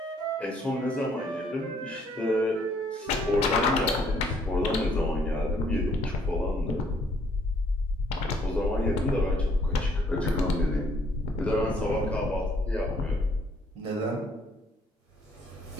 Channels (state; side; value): normal; both; correlation 0.65